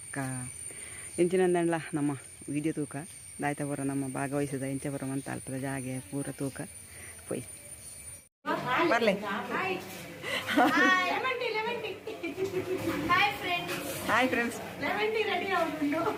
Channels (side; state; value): both; identical; correlation 1.00